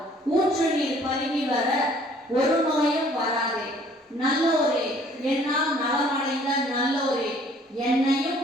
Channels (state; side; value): normal; both; correlation 0.57